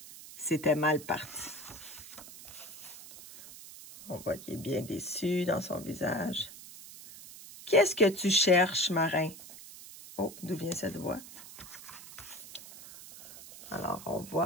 C'était mal parti. On voit qu'il est bien déçu dans son visage. Qu'est-ce que tu cherches, marin? Oh, d'où vient cette voix? Alors, on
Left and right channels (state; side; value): noise; right; hiss, 15 dB below the sound